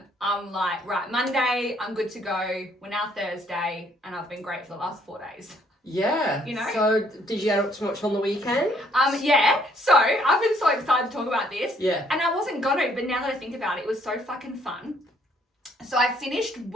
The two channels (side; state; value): both; normal; correlation 0.66